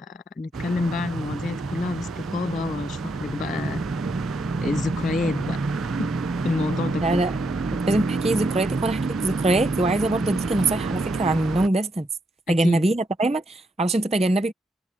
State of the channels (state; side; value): normal; both; correlation 0.79